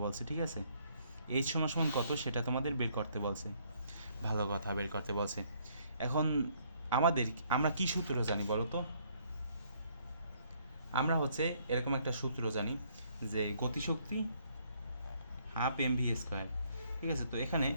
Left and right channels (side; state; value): both; inverted; correlation -0.67